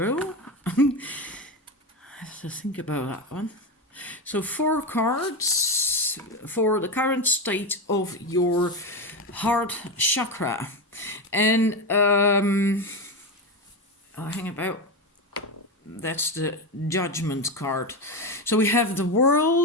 I have to think about that one. So four cards for the current state of your heart chakra. And hang about. That's the Judgment card. So we have the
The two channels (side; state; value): both; normal; correlation 0.16